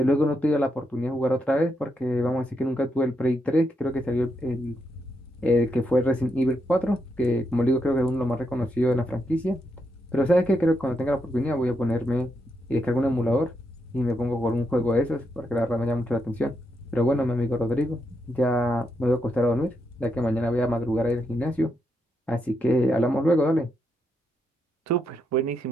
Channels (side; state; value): both; normal; correlation 0.81